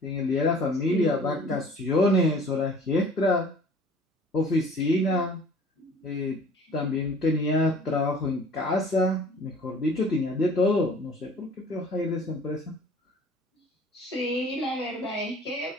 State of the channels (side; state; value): both; normal; correlation 0.49